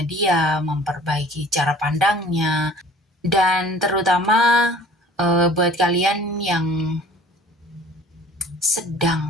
dia, memperbaiki cara pandangnya, dan terutama buat kalian yang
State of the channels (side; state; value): both; normal; correlation 0.49